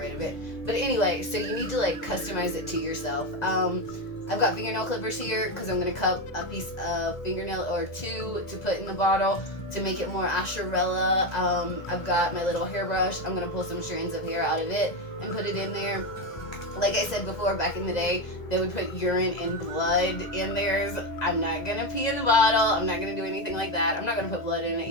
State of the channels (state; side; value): late; right; 2.0 ms